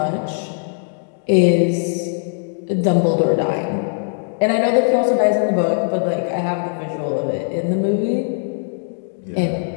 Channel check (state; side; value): silent; right; digital silence